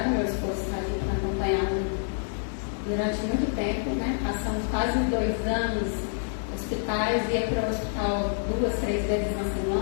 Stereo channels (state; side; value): silent; right; digital silence